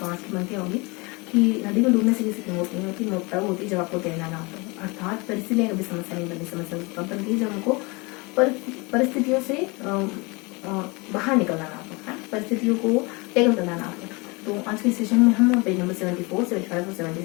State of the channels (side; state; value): right; quieter; 27.2 dB